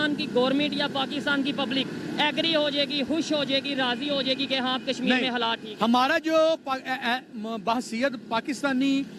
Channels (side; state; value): both; identical; correlation 1.00